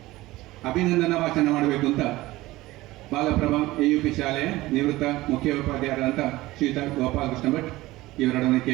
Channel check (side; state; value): left; quieter; 18.4 dB